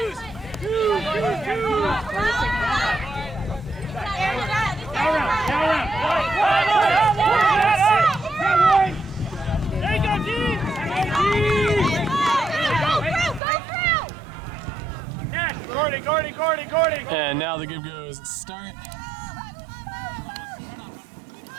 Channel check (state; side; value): drops out; left; at 13.4 s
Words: There you go, G! Gordon! And now the give goes start.